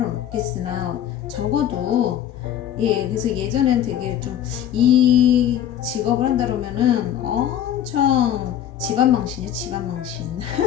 없겠으나 적어도 그래서 예전엔 되게 좀 이 직업을 한다 그러면은 엄청 집안망신이에요. 집안망신.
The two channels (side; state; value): right; quieter; 10.6 dB